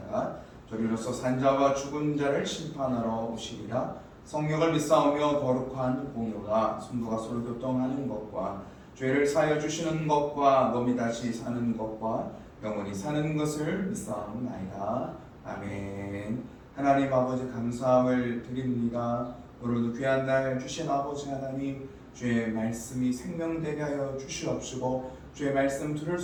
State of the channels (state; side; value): identical; both; correlation 1.00